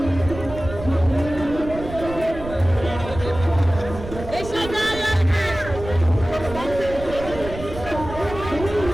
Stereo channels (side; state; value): right; noise; rumble, 11 dB below the sound